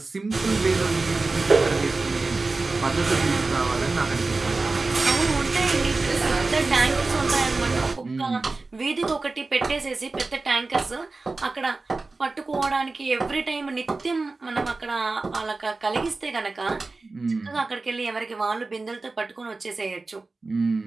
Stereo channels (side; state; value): left; quieter; 3.6 dB